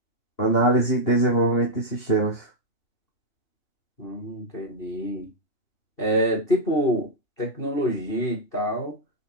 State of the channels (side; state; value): right; late; 2.7 ms